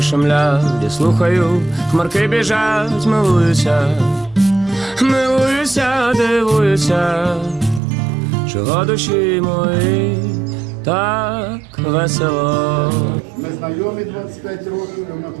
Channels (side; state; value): left; drops out; at 7.8 s